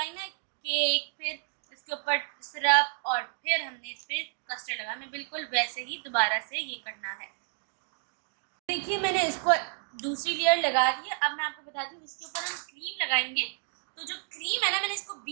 ना केक, फिर इसके ऊपर सिरप और फिर हमने इस पर कस्टर्ड लगा, हमें बिल्कुल वैसे ही दोबारा से ये करना है। देखिए मैंने इसको दूसरी लेयर लगा दी है। अब मैं आपको बताती हूँ, इसके ऊपर हम क्रीम लगाएंगे। तो जो क्रीम है ना, मैंने इसको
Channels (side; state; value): left; silent; 57 dB below the other